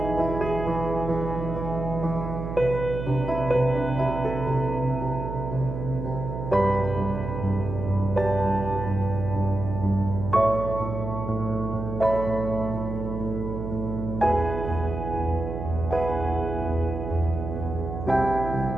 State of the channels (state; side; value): noise; right; hum, 6 dB below the sound